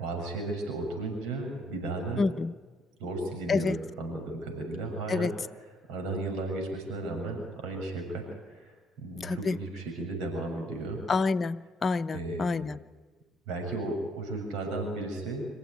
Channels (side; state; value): both; normal; correlation 0.67